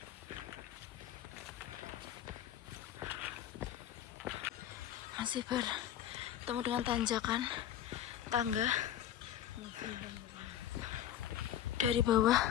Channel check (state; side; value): quieter; right; 11.1 dB